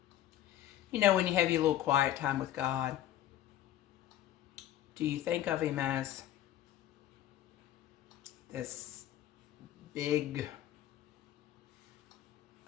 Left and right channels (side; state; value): right; quieter; 12.5 dB